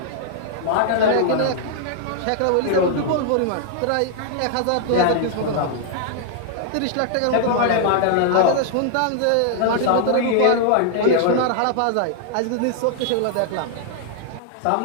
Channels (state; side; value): different; both; correlation -0.01